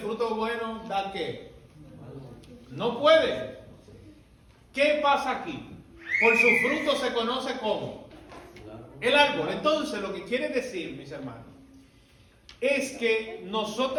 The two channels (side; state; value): both; identical; correlation 1.00